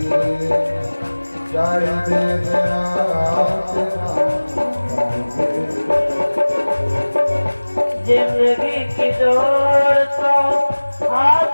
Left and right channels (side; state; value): both; inverted; correlation -1.00